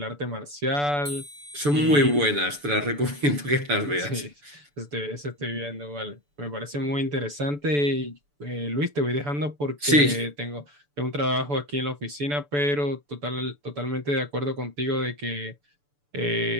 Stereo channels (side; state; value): left; late; 6.9 ms